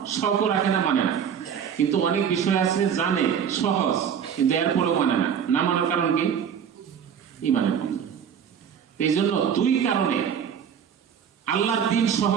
শৌক রাখে না, মানে না। কিন্তু অনেক বিষয় আছে জানে, সহজ, কিন্তু এরপরেও মানে না। না মানার কারণ কি? ঈমানের কমজোরি। এই জন্য দুই কারণে আল্লাহর দিন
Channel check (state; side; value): quieter; left; 8.0 dB